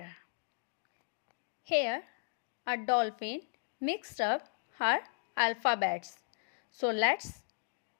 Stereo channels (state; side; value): silent; right; digital silence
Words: Here, a dolphin mixed up her alphabets. So let's